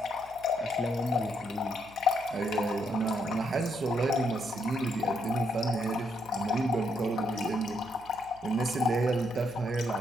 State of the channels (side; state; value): left; noise; hum, 24 dB below the sound